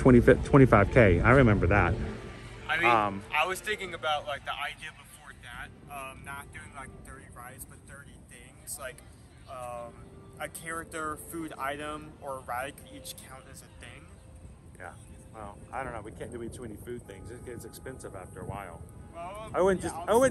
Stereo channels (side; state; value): both; identical; correlation 1.00